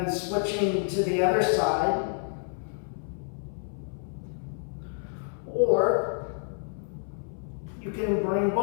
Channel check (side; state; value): right; silent; 58 dB below the other